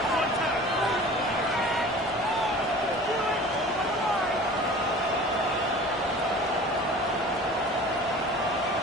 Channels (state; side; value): normal; both; correlation 0.42